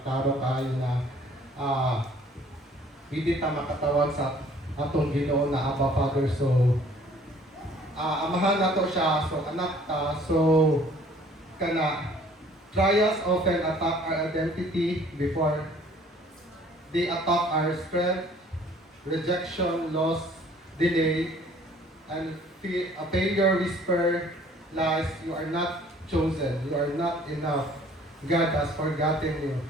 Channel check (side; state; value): both; normal; correlation 0.56